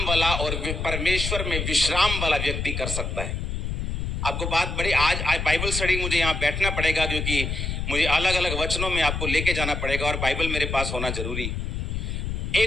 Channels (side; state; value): left; noise; rumble, 3 dB below the sound